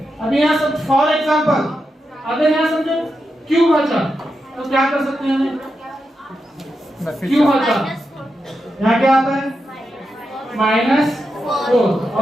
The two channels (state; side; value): normal; both; correlation 0.87